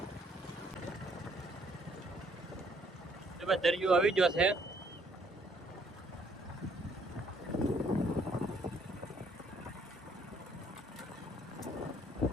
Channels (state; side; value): normal; both; correlation 0.65